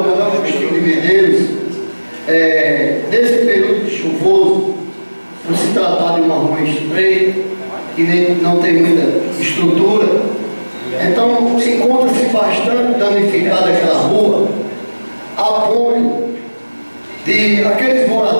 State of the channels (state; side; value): inverted; both; correlation -1.00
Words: Agostinho de Medeiros, nesse período chuvoso, por se tratar de uma rua estreita, que não tem muita estrutura, então encontra-se bastante danificada aquela rua, a ponto de aqueles